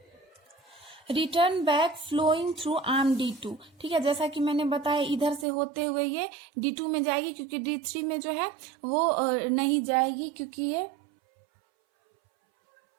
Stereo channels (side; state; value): left; drops out; at 5.5 s